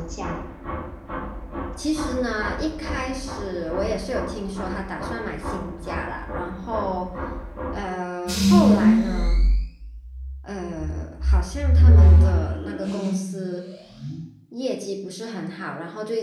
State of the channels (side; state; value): both; identical; correlation 1.00